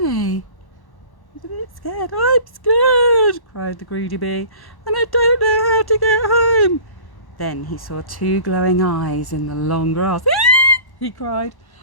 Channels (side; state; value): right; late; 1.1 ms